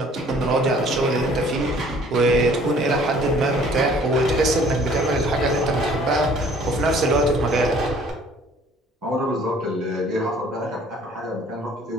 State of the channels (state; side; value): normal; both; correlation 0.55